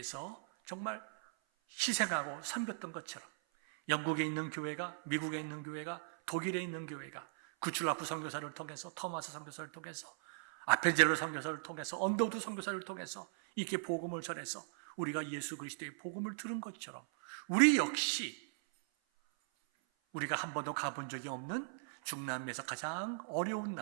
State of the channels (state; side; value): silent; left; 52 dB below the other